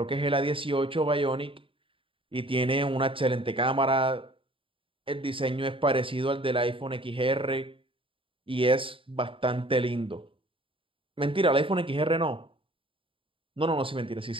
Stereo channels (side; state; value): left; late; 0.25 ms